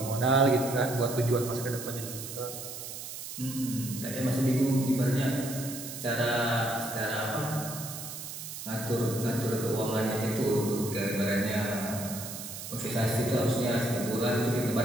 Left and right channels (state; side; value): noise; right; hiss, 9 dB below the sound